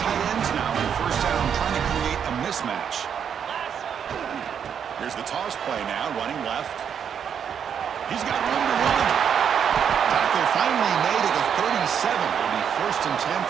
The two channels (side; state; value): left; quieter; 7.9 dB